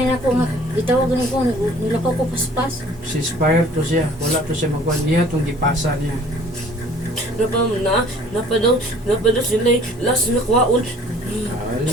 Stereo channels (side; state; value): both; normal; correlation 0.53